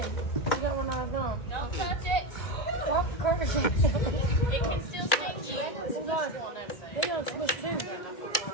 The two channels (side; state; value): right; late; 1.9 ms